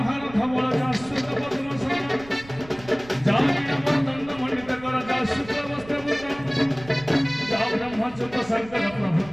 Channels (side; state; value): right; noise; rumble, 19 dB below the sound